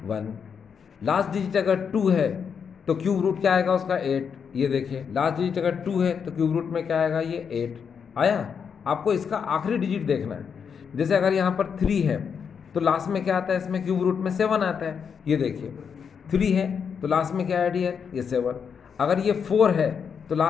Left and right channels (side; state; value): right; quieter; 6.8 dB